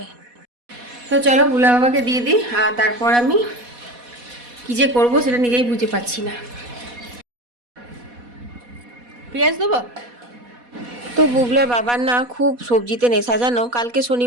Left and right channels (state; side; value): late; left; 4.1 ms